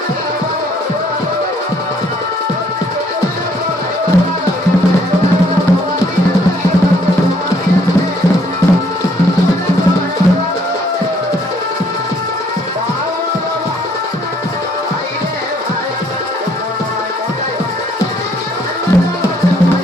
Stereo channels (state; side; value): normal; both; correlation 0.66